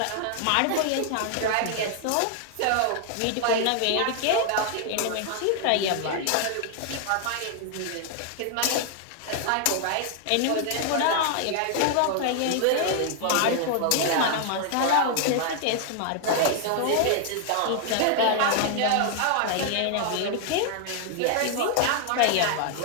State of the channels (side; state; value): both; different; correlation 0.00